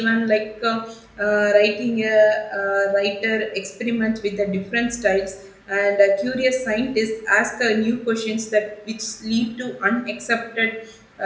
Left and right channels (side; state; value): both; identical; correlation 1.00